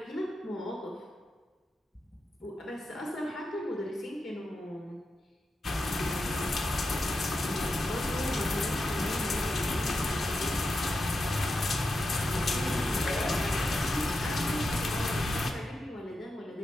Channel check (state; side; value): normal; both; correlation 0.88